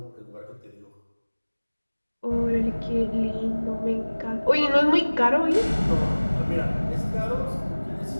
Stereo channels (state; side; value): inverted; both; correlation -1.00